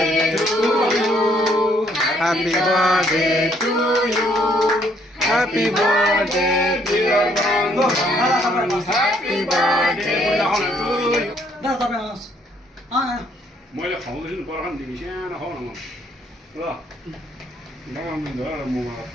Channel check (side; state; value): both; normal; correlation 0.67